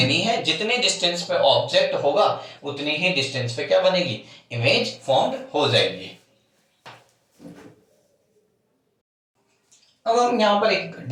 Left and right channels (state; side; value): identical; both; correlation 1.00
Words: है, जितने डिस्टेंस पे ऑब्जेक्ट होगा उतनी ही डिस्टेंस पे क्या बनेगी, इमेज फॉर्म्ड हो जाएगी। अब हम यहां पर एक